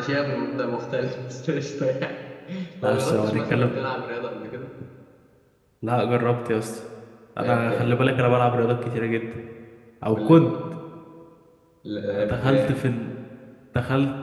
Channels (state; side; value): identical; both; correlation 1.00